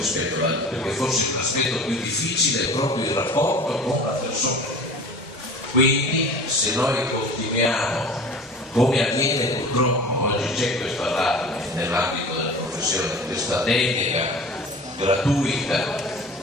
ad altre, perché forse l'aspetto più difficile è proprio il rapporto con la persona. Quindi se noi continuiamo, come avviene purtroppo, oggi c'è questo allarme nell'ambito della professione, questa delega gratuita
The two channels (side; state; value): both; normal; correlation 0.40